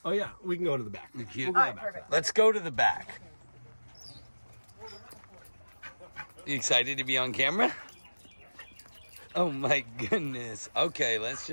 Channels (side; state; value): both; inverted; correlation -1.00